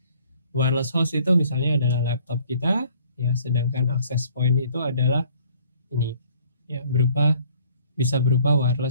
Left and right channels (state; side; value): inverted; both; correlation -0.58